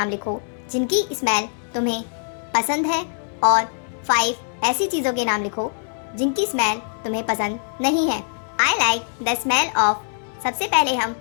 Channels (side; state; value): right; silent; digital silence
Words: लिखो जिनकी स्मेल तुम्हें पसंद है और 5 ऐसी चीज़ों के नाम लिखो जिनकी स्मेल तुम्हें पसंद नहीं है। I like the smell of. सबसे पहले हम